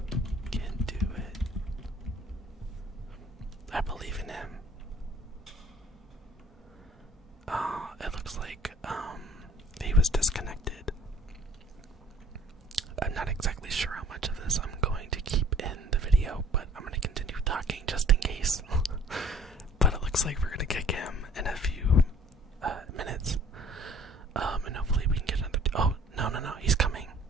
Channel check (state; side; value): normal; both; correlation 0.54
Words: can do it. I believe in him. It looks like he was disconnected. I'm not exactly sure how much of this I'm going to keep in the video, but I'm going to continue talking just in case. But it looks like we're going to kick him in a few minutes. And hopefully we can get another. Oh, no, he's coming.